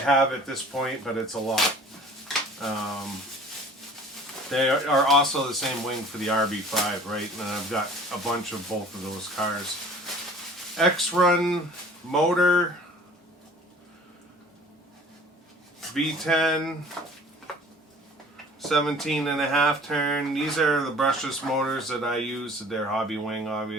have at this point, but it's a lot. They are also the same wing for the RB5, right? And I've got a bunch of both of those cars. X-Run motor, V10, 17.5 turn. These are the brushless motors that I use. They're hobby wing,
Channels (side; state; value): both; normal; correlation 0.48